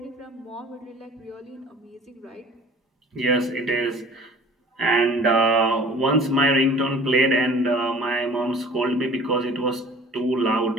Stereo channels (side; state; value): both; normal; correlation 0.47